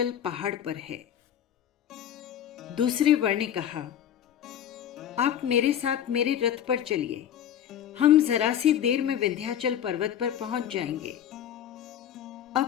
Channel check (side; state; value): right; quieter; 10.0 dB